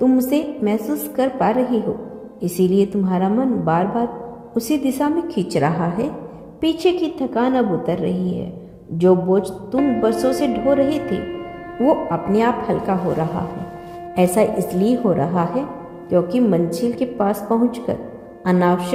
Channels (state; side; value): identical; both; correlation 1.00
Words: उसे महसूस कर पा रही हो। इसीलिए तुम्हारा मन बार बार उसी दिशा में खींच रहा है। पीछे की थकान अब उतर रही है। जो बोझ तुम बरसों से ढो रहे थे वो अपने आप हल्का हो रहा है। ऐसा इसलिए हो रहा है क्योंकि मंजिल के पास पहुंचकर